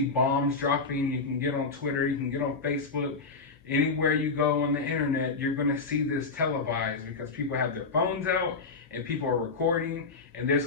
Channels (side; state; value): right; quieter; 4.2 dB